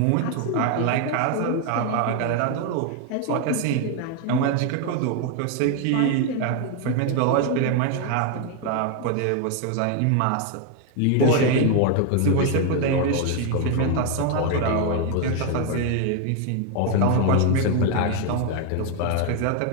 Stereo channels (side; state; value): both; different; correlation 0.01